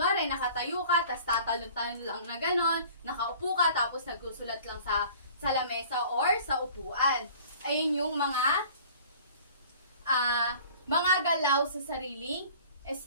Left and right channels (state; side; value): inverted; both; correlation -0.48